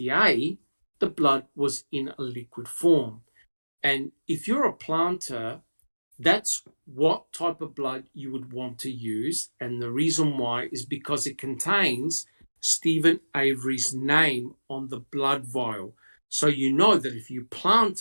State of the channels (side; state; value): both; inverted; correlation -1.00